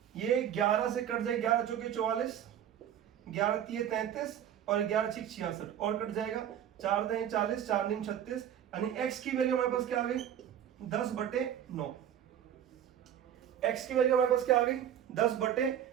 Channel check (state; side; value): quieter; left; 10.0 dB